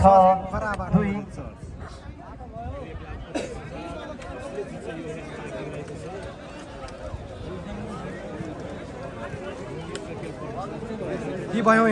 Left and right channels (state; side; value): identical; both; correlation 1.00